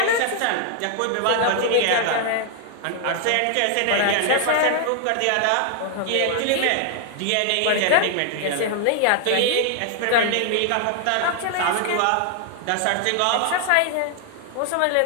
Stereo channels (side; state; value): both; different; correlation 0.00